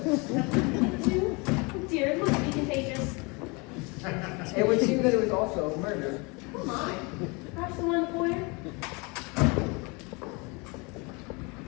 Oh dear, it must be contagious. It would seem that it was also murdered. Oh my. Perhaps the one in the foyer?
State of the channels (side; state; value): right; quieter; 28.7 dB